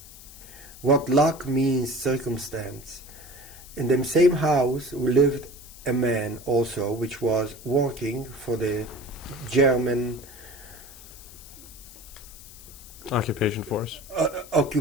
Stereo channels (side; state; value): left; noise; hiss, 18 dB below the sound